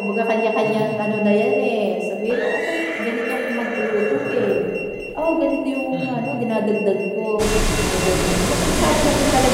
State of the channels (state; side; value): identical; both; correlation 1.00